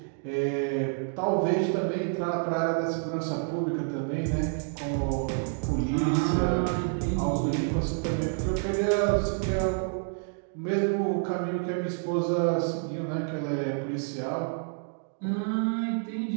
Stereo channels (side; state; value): left; silent; 59 dB below the other